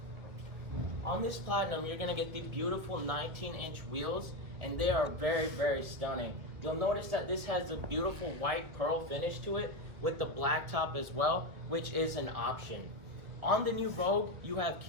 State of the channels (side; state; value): left; late; 2.1 ms